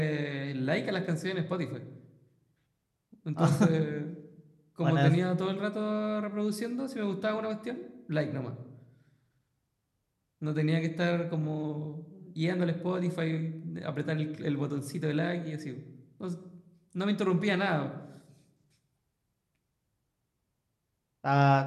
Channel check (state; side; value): identical; both; correlation 1.00